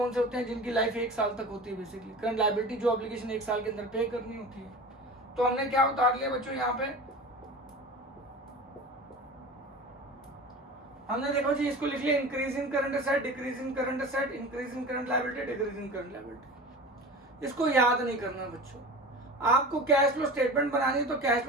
से होते हैं, जिनकी लाइफ 1 साल तक होती है बेसिकली। करंट लायबिलिटी जो ऑब्लिगेशन 1 साल के अंदर पे करनी होती है। तो हमने क्या उतार लिया बच्चों, यहाँ पे हमने देखो जी इसको लिख लिया increase in current asset, decrease in current asset, increase in current liability, decrease in current liability. इसको याद नहीं करना बच्चों, आपको कैश फ्लो स्टेटमेंट बनानी है तो कैश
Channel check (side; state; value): both; normal; correlation 0.34